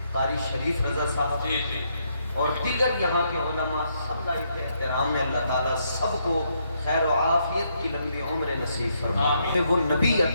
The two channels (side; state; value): both; inverted; correlation -0.75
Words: قاری شریف رضا صاحب اور دیگر یہاں کے علماء، سب لائق احترام میں اللہ تعالیٰ سب کو خیر و عافیت کی لمبی عمر نصیب فرمائے۔ وہ نبی